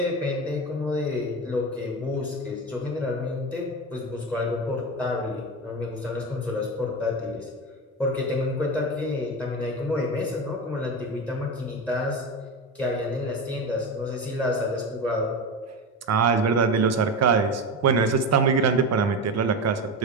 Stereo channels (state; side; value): normal; both; correlation 0.22